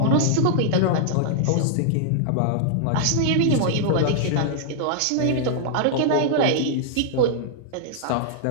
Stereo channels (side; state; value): both; different; correlation -0.01